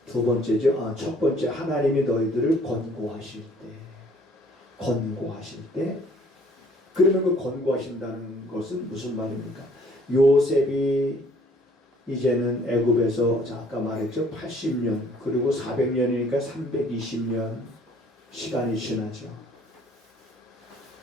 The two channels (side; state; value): both; normal; correlation 0.59